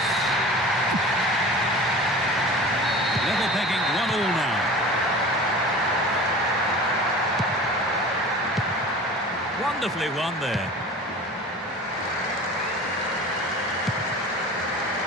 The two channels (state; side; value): normal; both; correlation 0.38